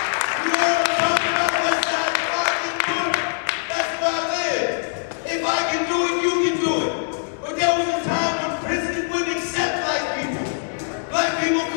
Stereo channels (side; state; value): right; silent; 64 dB below the other